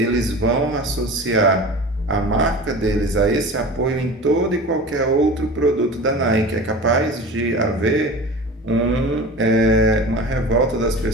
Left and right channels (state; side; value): normal; both; correlation 0.35